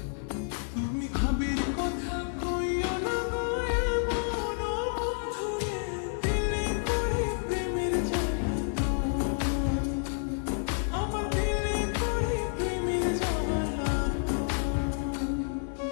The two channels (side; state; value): right; silent; 58 dB below the other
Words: তুমি ভাবির কথা কইও না গো এমন বন্ধুরে, দিলে করে প্রেমের জ্বালাতন, আমার দিলে করে প্রেমের জ্বালাতন।